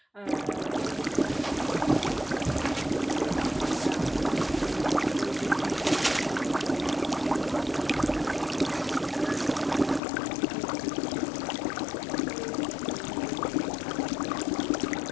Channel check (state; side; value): drops out; right; at 10.0 s